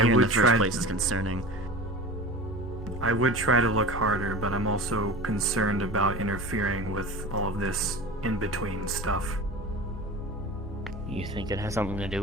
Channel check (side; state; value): both; normal; correlation 0.34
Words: here in the would first try- place is concerning. I would try to look harder, but I'm also concerned about interfering with all of this in-between stuff. You think it has something to do